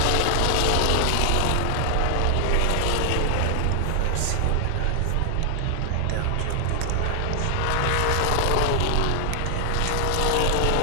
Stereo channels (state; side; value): different; both; correlation 0.00